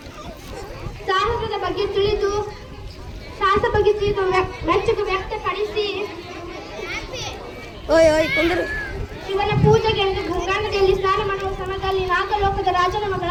ಸಾಹಸದ ಬಗ್ಗೆ ತಿಳಿದು ಮೆಚ್ಚುಗೆ ವ್ಯಕ್ತಪಡಿಸಿ ಶಿವನ ಪೂಜೆಗೆ ಎಂದು ಗಂಗಾ ನದಿಯಲ್ಲಿ ಸ್ನಾನ ಮಾಡುವ ಸಮಯದಲ್ಲಿ ನಾಗಲೋಕದ ರಾಜನ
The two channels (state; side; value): identical; both; correlation 1.00